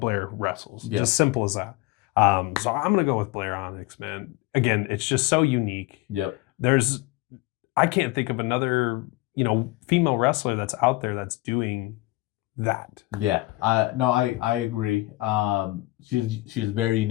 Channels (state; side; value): quieter; right; 20.6 dB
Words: wrestles. Yeah. Just simple as that. So I'm gonna go with Blair Onyx, man. Again, it's just so unique. Yep. I can't think of another female wrestler that's out there that's doing that. Yeah. I agree. She's very